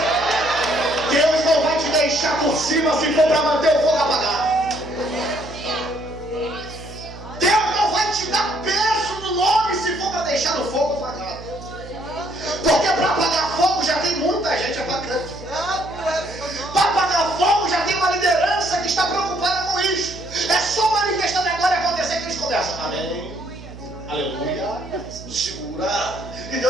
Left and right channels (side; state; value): right; noise; hum, 15 dB below the sound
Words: Deus não vai te deixar por cima se for para manter o fogo apagado. Deus não vai te dar peso no nome se for para deixar o fogo apagado. Porque para apagar fogo já tem muita gente apagando. Para apagar fogo já tem uma liderança que está preocupada com isso. É só manifestando a glória acontecer que eles começam. Amém. Aleluia. Segura. E